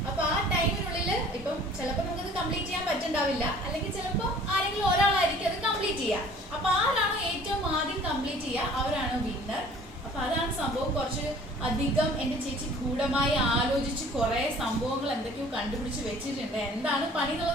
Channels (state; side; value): normal; both; correlation 0.51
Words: അപ്പോൾ ആ ടൈമിനുള്ളിൽ ഇപ്പം ചിലപ്പോൾ നമുക്കത് കംപ്ലീറ്റ് ചെയ്യാൻ പറ്റുന്നുണ്ടാവില്ല, അല്ലെങ്കിൽ ചിലപ്പോൾ ആരെങ്കിലും ഒരാളായിരിക്കും അത് കംപ്ലീറ്റ് ചെയ്യുക. അപ്പോൾ ആരാണോ ഏറ്റവും ആദ്യം കംപ്ലീറ്റ് ചെയ്യുക അവരാണ് വിന്നർ. അപ്പോൾ അതാണ് സംഭവം. കുറച്ച് അധികം എൻ്റെ ചേച്ചി ഗൂഢമായി ആലോചിച്ച് കുറേ സംഭവങ്ങൾ എന്തൊക്കെയോ കണ്ടുപിടിച്ച് വെച്ചിട്ടുണ്ട്. എന്താണ് പണി